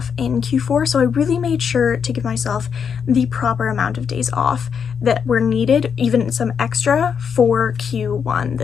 in Q4, so I really made sure to give myself the proper amount of days off that were needed, even some extra, for Q1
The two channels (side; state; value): right; quieter; 6.9 dB